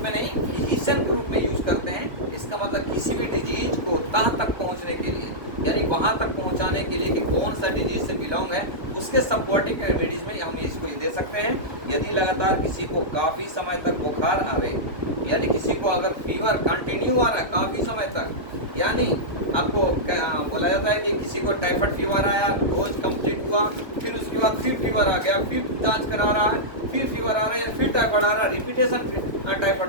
में नहीं, फिजिशियन के रूप में यूज करते हैं। इसका मतलब किसी भी डिजीज को तह तक पहुंचने के लिए, यानी वहां तक पहुंचाने के लिए कि कौन सा डिजीज से बिलोंग है, उसके सपोर्टिंग रेमेडीज में हम इसको दे सकते हैं। यदि लगातार किसी को काफी समय तक बुखार आवे, यानी किसी को अगर फीवर कंटिन्यू आ रहा है काफी समय तक, यानी आपको बोला जाता है कि किसी को टाइफाइड फीवर आया, डोज कंप्लीट हुआ, फिर उसके बाद फिर फीवर आ गया, फिर जांच करा रहा है, फिर फीवर आ रहा है, फिर टाइफाइड आ रहा है, रिपीटेशन टाइफाइड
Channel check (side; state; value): left; late; 1.3 ms